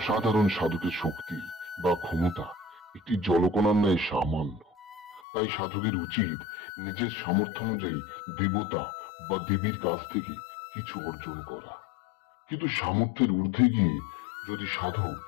সাধকের শক্তি বা ক্ষমতা একটি জলকণার ন্যায় সামান্য। তাই সাধকের উচিত নিজের সামর্থ্য অনুযায়ী দেবতা বা দেবীর কাছ থেকে কিছু অর্জন করা। কিন্তু সামর্থ্যের ঊর্ধ্বে গিয়ে যদি সাধক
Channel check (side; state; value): right; drops out; at 5.2 s